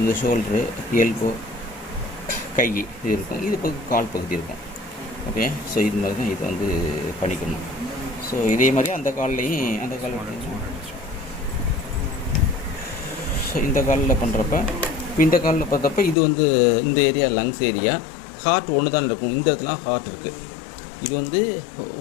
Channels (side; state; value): right; drops out; at 16.2 s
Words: இந்த ஷோல்டரு, எல்போ, கை இது இருக்கும், இது பகுதி கால் பகுதி இருக்கும். ஓகே, ஸோ இது மாதிரி தான் இது வந்து பண்ணிக்கணும். ஸோ இதே மாதிரி அந்த கால்லையும் அந்த கால் ஸோ இந்த காலில் பண்ணுறப்ப இப்போ இந்த காலில் பார்த்தப்ப இது வந்து இந்த ஏரியா லங்ஸ் ஏரியா, ஹார்ட் ஒன்று தான் இருக்கும். இந்த இடத்துல ஹார்ட் இருக்குது. இது வந்து